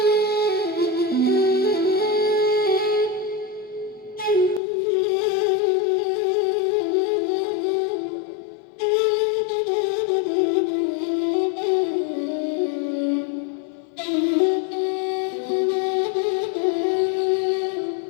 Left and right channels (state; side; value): drops out; right; at 4.6 s